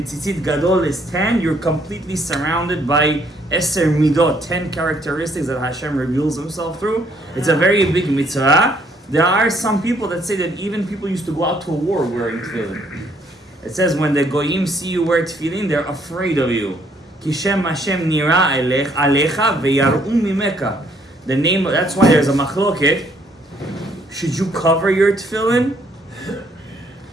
tzitzit gadol is 10. You're completely surrounded by eser midot, 10 characteristics that Hashem reveals Himself through. It's a very big mitzvah. There are some people that say that even people used to go out to war wearing tefillin. It says when the goyim see you wear tefillin, they're afraid of you. Kishem Hashem nira alecha veyaru mimeka. The name. That's why there's a machloket. Should you cover your tefillin,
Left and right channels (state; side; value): normal; both; correlation 0.67